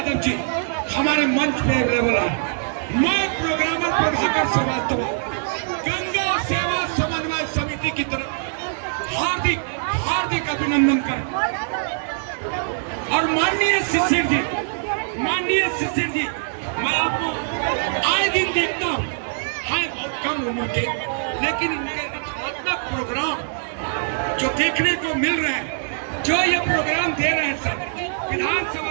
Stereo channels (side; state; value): left; silent; digital silence